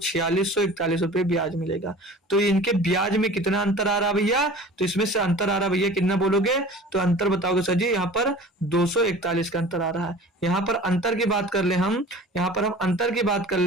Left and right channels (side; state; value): both; normal; correlation 0.42